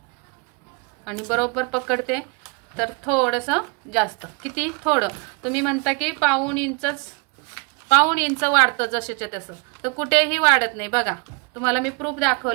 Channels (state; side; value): quieter; left; 31.8 dB